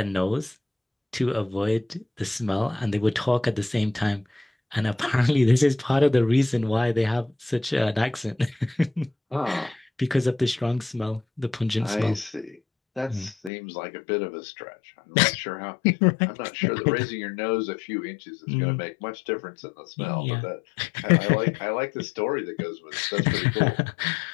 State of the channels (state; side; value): drops out; right; at 13.5 s